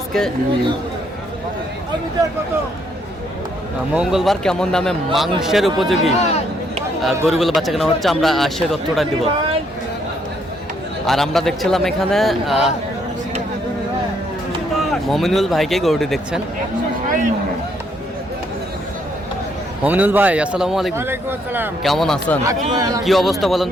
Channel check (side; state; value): both; normal; correlation 0.71